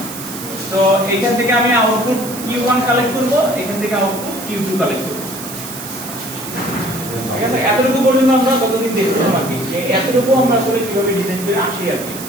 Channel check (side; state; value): right; noise; hiss, 11 dB below the sound